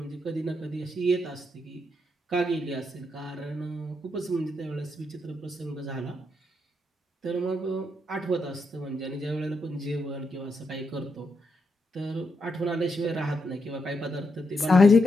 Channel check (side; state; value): both; normal; correlation 0.81